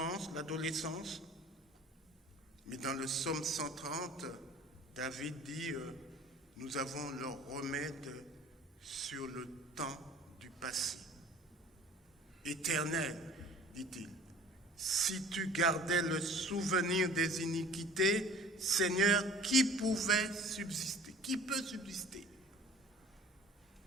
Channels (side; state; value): both; normal; correlation 0.47